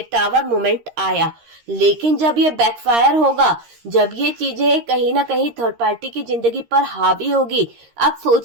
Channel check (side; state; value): left; late; 13 ms